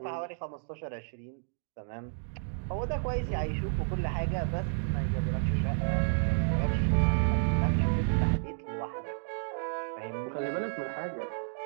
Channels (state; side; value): silent; left; digital silence